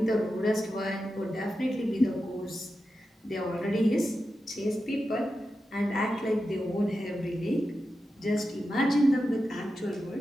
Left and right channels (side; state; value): both; normal; correlation 0.90